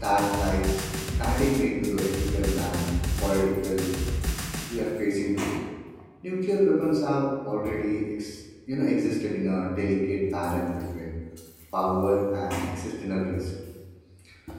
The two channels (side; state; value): both; identical; correlation 1.00